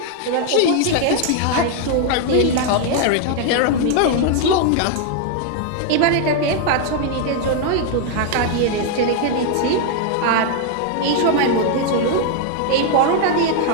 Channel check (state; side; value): different; both; correlation 0.00